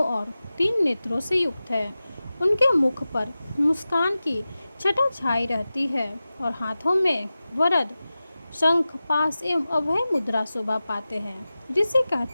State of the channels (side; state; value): both; inverted; correlation -0.95